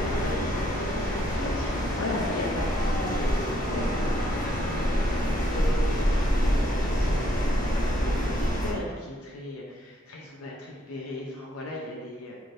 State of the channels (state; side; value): normal; both; correlation 0.71